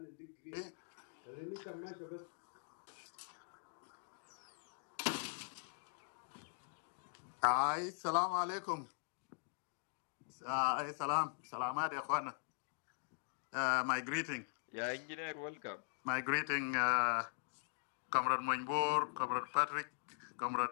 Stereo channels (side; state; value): right; silent; digital silence